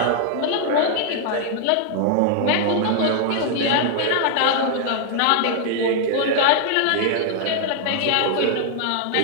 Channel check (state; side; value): different; both; correlation 0.00